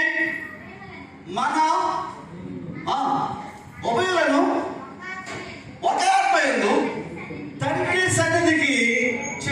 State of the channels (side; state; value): both; identical; correlation 1.00